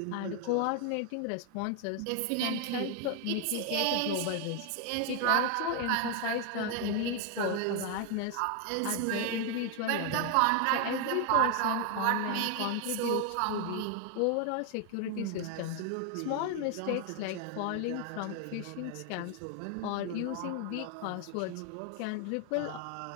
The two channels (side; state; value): both; different; correlation 0.01